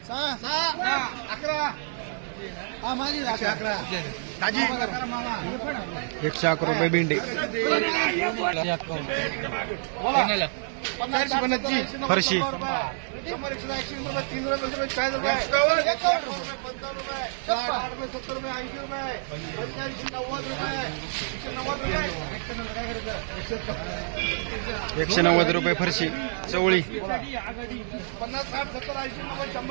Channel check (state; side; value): silent; left; 60 dB below the other